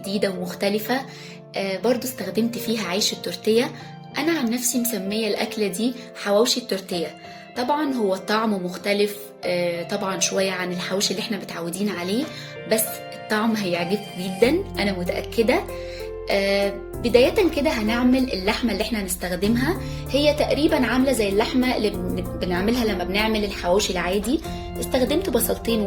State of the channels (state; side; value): identical; both; correlation 1.00